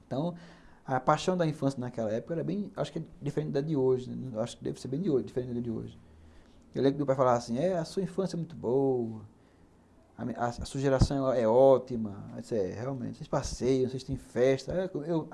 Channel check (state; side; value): identical; both; correlation 1.00